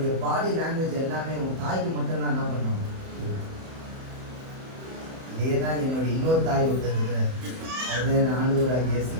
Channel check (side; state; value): left; late; 31 ms